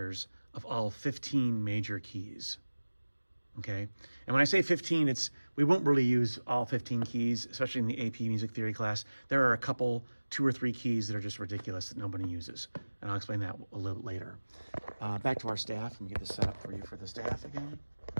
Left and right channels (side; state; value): both; inverted; correlation -1.00